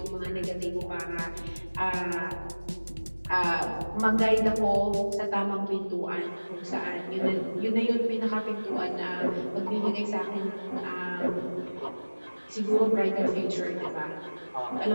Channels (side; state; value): both; inverted; correlation -1.00